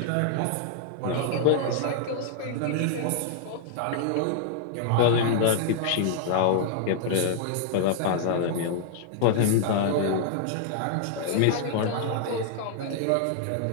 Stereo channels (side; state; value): both; different; correlation -0.01